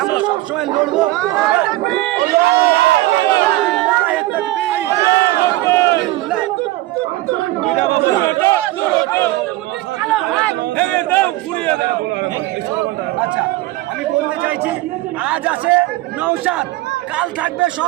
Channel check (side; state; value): left; quieter; 18.0 dB